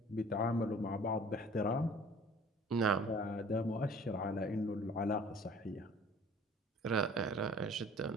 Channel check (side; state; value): both; normal; correlation 0.49